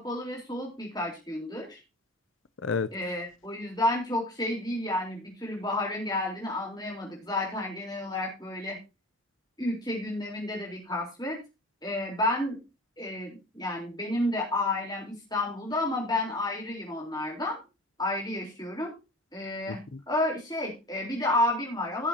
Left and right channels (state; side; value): normal; both; correlation 0.36